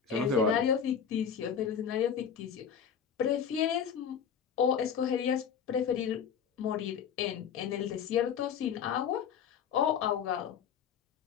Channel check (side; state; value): right; quieter; 7.7 dB